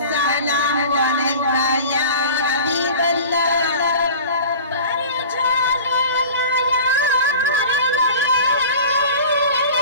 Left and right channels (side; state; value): both; inverted; correlation -0.39